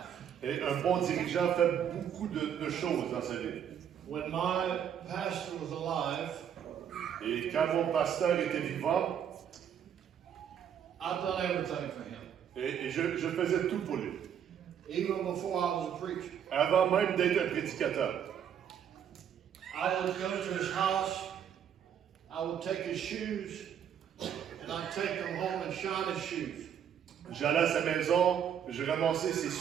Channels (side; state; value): left; quieter; 8.8 dB